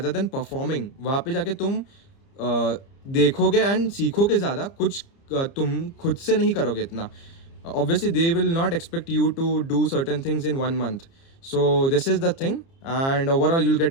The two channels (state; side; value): late; right; 30 ms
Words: than performing. वहाँ पे जाके तुम देखोगे एंड सीखोगे ज़्यादा, कुछ तुम खुद से नहीं करोगे इतना। Obviously they will not expect you to do certain things in 1 month. So this is the thing, and overall you'll